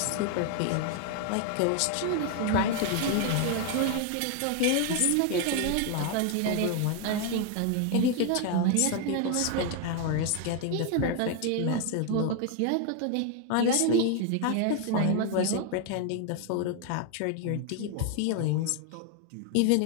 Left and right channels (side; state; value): both; different; correlation 0.01